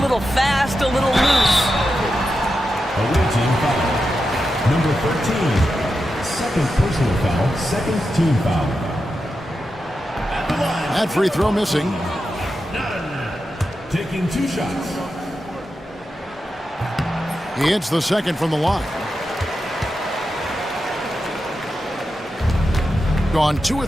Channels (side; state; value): both; normal; correlation 0.89